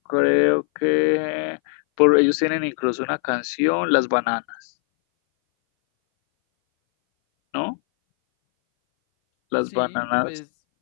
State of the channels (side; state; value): right; silent; 61 dB below the other